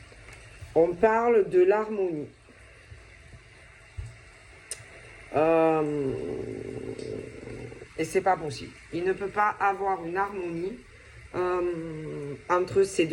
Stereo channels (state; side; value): identical; both; correlation 1.00